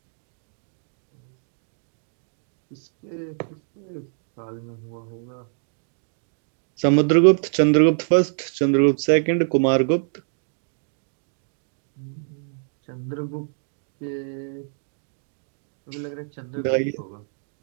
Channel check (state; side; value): silent; left; digital silence